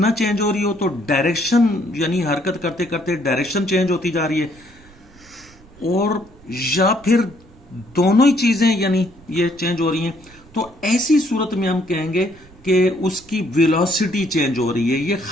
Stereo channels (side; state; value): right; noise; rumble, 25 dB below the sound